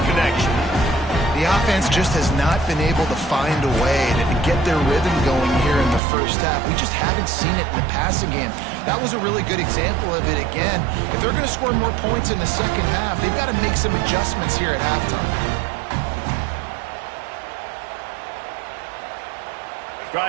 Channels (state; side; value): drops out; left; at 6.0 s